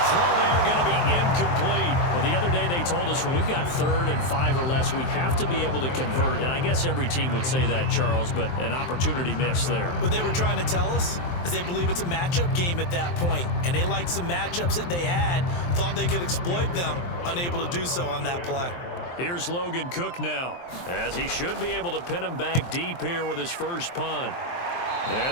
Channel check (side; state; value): right; late; 23 ms